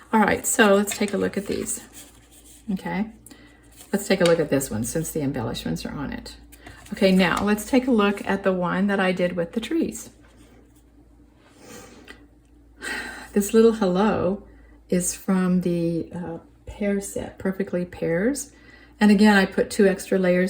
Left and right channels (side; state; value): both; identical; correlation 1.00